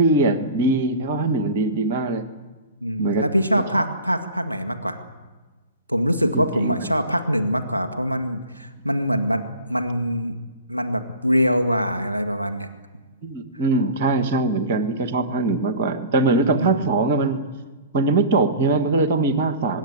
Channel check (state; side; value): inverted; both; correlation -0.40